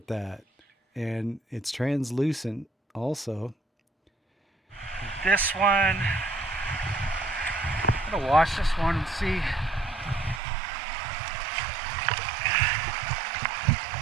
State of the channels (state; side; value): drops out; left; at 10.4 s